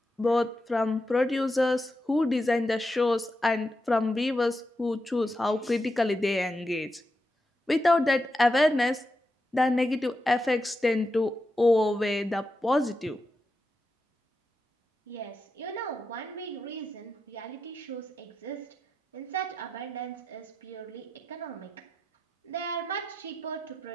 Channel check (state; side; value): normal; both; correlation 0.87